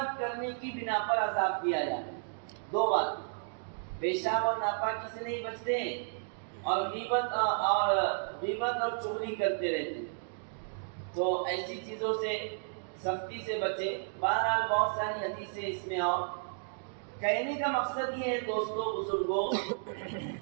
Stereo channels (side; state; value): left; silent; digital silence